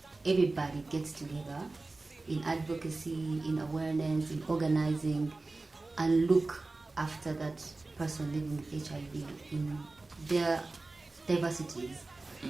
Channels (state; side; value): quieter; left; 3.3 dB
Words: everybody gets together in advocacy, in awareness, in organizing, and look after that person living with HIV in their diversities.